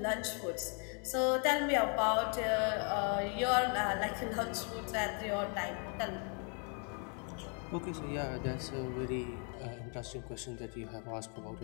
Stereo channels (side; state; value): right; quieter; 38.9 dB